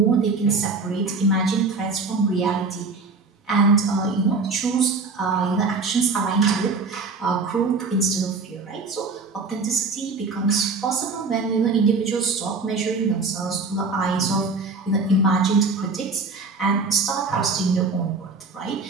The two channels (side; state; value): left; quieter; 4.1 dB